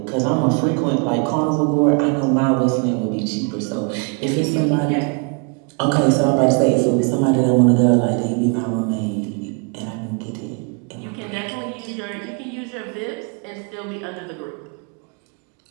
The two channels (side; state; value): left; quieter; 35.6 dB